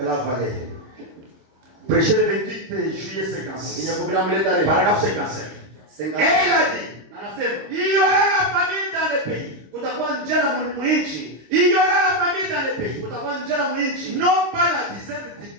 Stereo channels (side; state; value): left; late; 26 ms